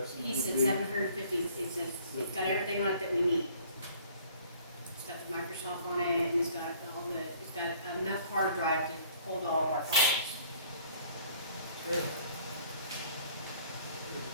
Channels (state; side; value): inverted; both; correlation -0.56